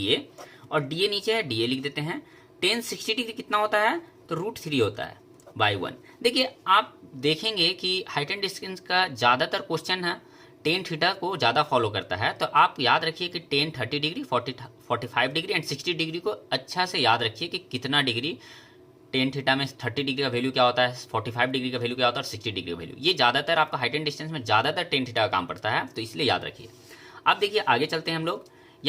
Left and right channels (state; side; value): identical; both; correlation 1.00